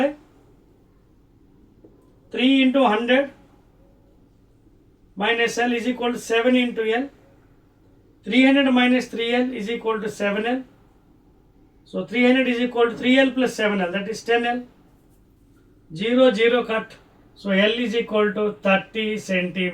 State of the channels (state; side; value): identical; both; correlation 1.00